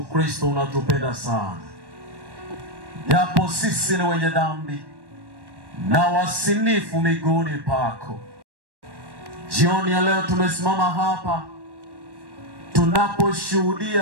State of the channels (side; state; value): left; late; 1.1 ms